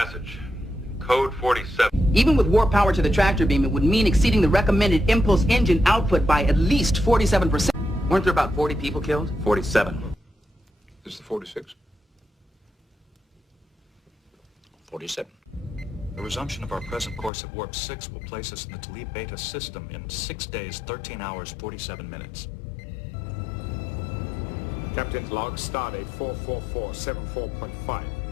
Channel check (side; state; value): right; drops out; at 17.3 s